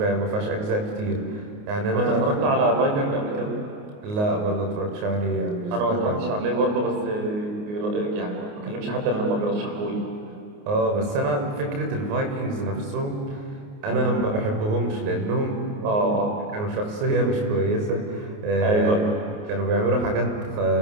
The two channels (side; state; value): left; late; 29 ms